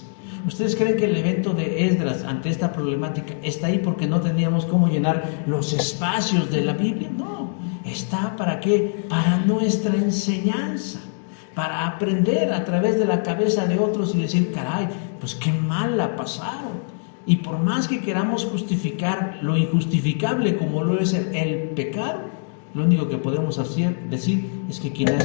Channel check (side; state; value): right; silent; digital silence